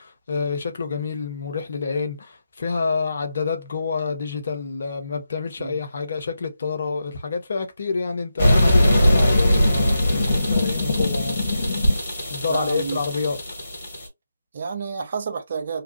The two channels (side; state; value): both; inverted; correlation -0.87